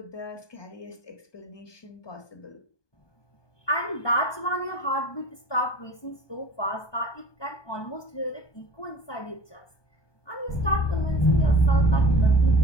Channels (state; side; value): late; right; 1.2 ms